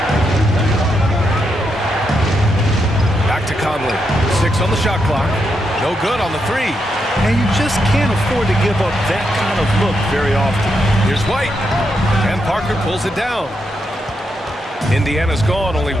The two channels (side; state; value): both; normal; correlation 0.82